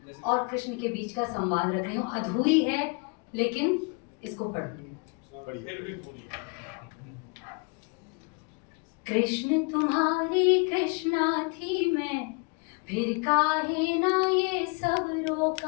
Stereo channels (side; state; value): right; quieter; 33.2 dB